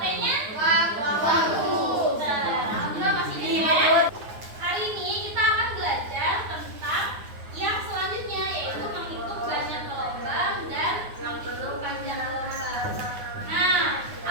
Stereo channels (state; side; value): late; left; 9.7 ms